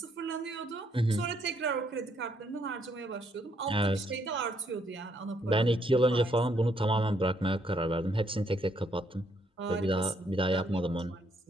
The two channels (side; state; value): both; normal; correlation 0.72